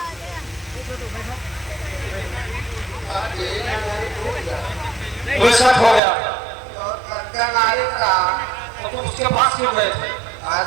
शक हो गया तो तुम उसके पास क्यों गए थे?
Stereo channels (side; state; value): left; drops out; at 6.0 s